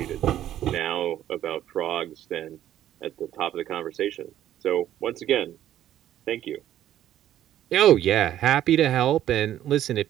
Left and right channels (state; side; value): quieter; left; 12.0 dB